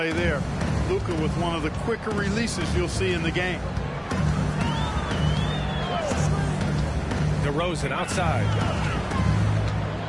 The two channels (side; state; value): both; identical; correlation 1.00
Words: there. Luka with one of the quicker releases you'll see in the game. DeRozan outside.